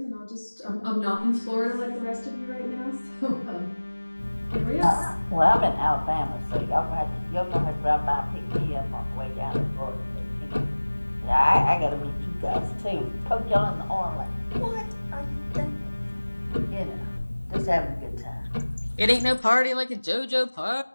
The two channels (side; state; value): both; inverted; correlation -1.00